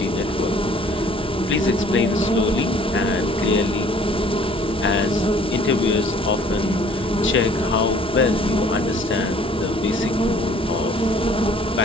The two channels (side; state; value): both; normal; correlation 0.55